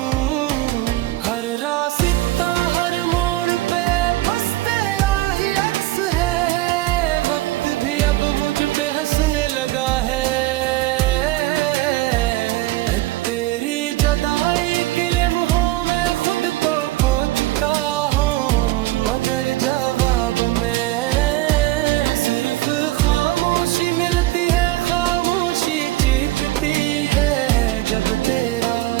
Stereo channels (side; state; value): left; quieter; 17.1 dB